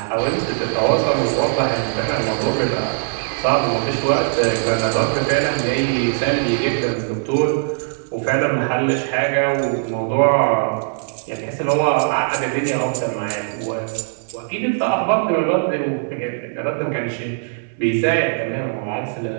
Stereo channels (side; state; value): left; silent; 64 dB below the other